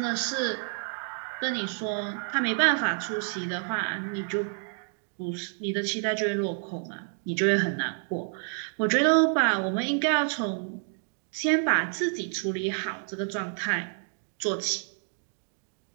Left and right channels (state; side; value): silent; left; 59 dB below the other